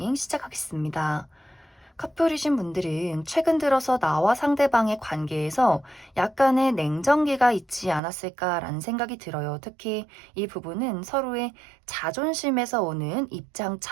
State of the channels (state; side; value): drops out; left; at 8.0 s